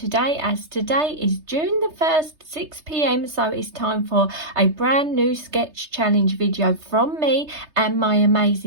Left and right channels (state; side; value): late; left; 3.3 ms